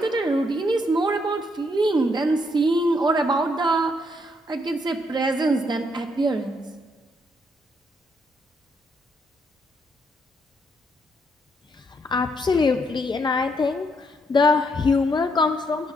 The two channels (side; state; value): both; normal; correlation 0.74